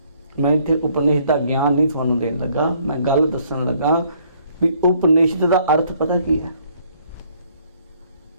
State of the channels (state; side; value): inverted; both; correlation -0.65